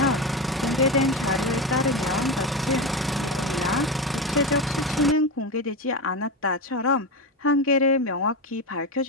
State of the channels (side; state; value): both; normal; correlation 0.18